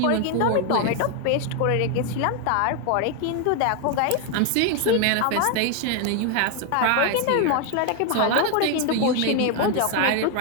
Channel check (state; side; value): different; both; correlation 0.01